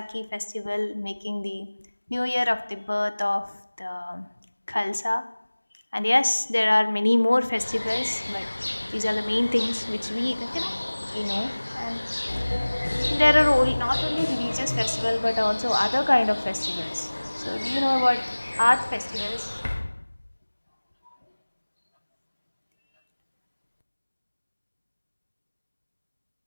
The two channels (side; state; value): both; inverted; correlation -1.00